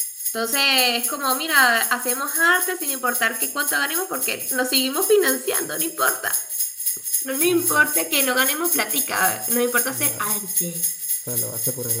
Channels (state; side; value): identical; both; correlation 1.00